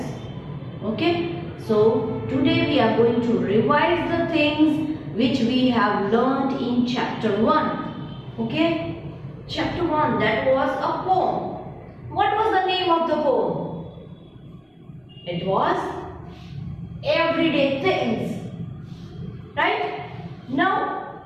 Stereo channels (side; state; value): both; identical; correlation 1.00